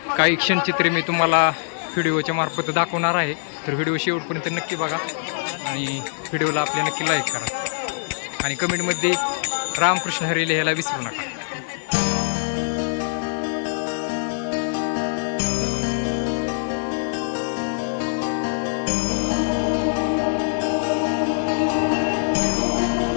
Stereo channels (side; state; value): right; silent; digital silence